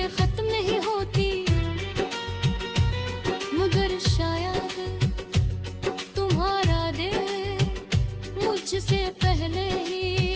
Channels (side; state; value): both; identical; correlation 1.00